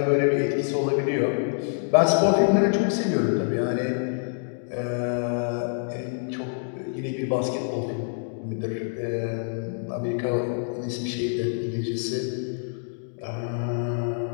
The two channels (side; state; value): right; silent; digital silence